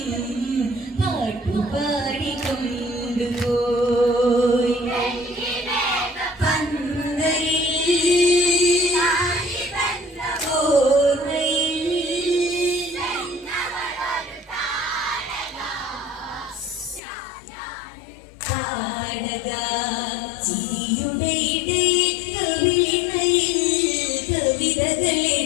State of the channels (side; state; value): right; drops out; at 17.0 s